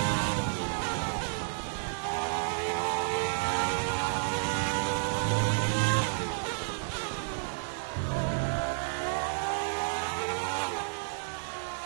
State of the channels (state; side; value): silent; left; 57 dB below the other